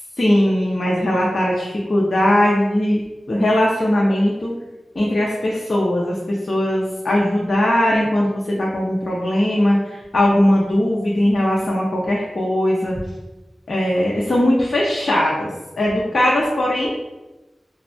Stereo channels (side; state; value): both; normal; correlation 0.95